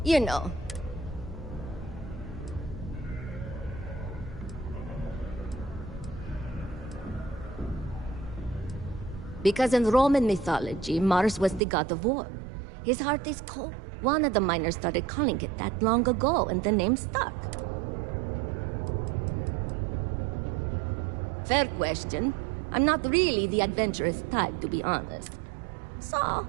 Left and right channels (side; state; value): left; drops out; at 11.6 s